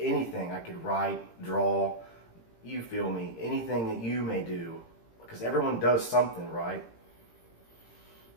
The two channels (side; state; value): right; late; 18 ms